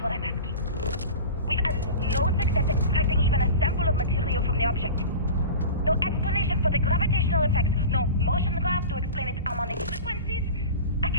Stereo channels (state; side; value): inverted; both; correlation -0.33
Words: what I'm asking. We've had no success extracting even a sample of material from the object. No explanation for the gravitational effects. No motion graph to explain its harmonic frequencies. I